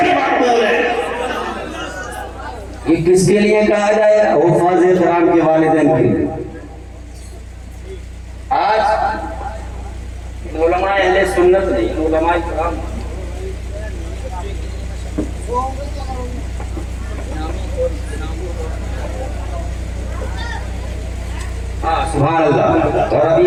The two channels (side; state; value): both; identical; correlation 1.00